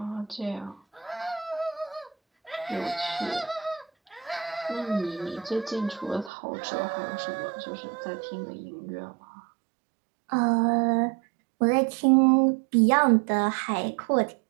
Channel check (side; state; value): left; drops out; at 6.3 s